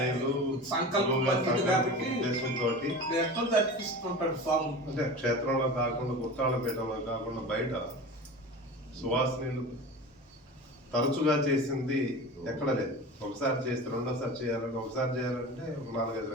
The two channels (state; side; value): normal; both; correlation 0.32